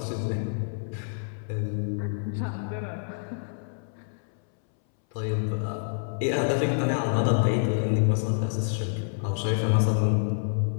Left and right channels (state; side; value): silent; right; 60 dB below the other